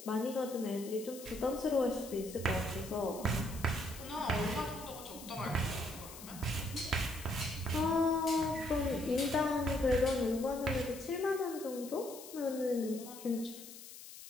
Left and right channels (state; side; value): noise; left; hiss, 14 dB below the sound